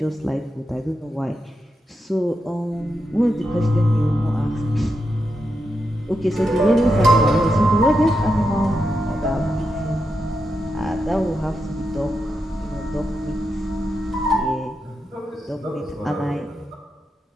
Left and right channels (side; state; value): both; normal; correlation 0.86